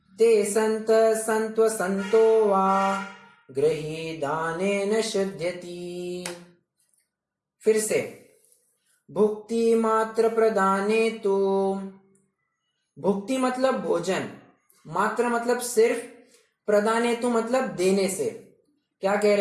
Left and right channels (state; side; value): identical; both; correlation 1.00